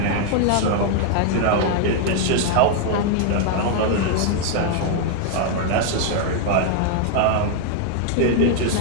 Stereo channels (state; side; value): different; both; correlation 0.00